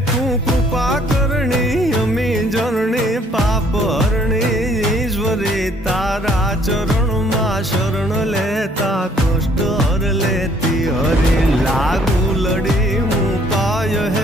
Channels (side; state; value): both; normal; correlation 0.62